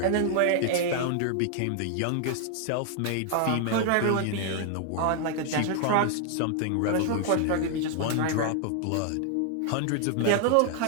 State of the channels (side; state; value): both; different; correlation 0.00